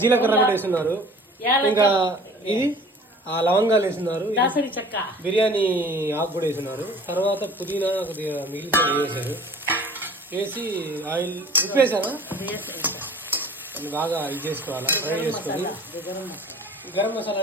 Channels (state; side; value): normal; both; correlation 0.46